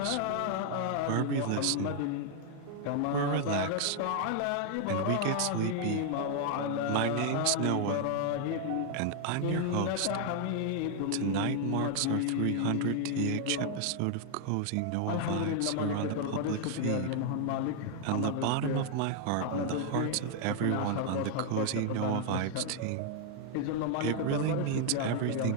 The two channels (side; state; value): both; different; correlation 0.00